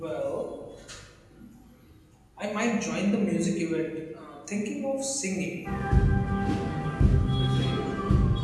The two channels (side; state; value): both; identical; correlation 1.00